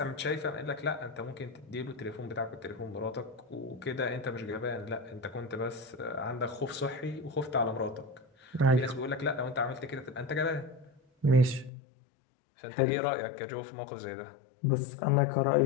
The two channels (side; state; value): right; drops out; at 11.7 s